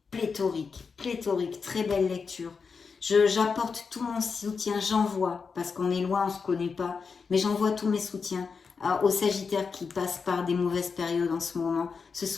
pléthorique, très belle lecture. J'apporte tout mon soutien, j'envoie, parce qu'on est loin, on ne se connaît pas, mais j'envoie tous mes soutiens aux Sagittaires qui passent par des mauvaises périodes en ce moment. Ce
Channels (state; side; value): quieter; right; 5.3 dB